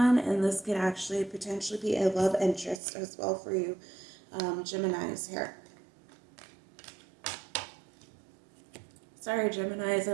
and this could actually potentially be a love interest as well for you, Geminis here. Sorry, Geminis,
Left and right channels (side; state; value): left; drops out; at 2.8 s